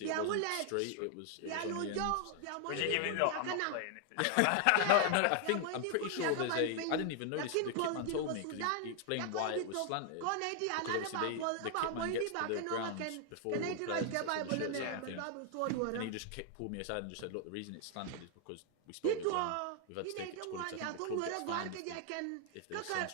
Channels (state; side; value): different; both; correlation 0.00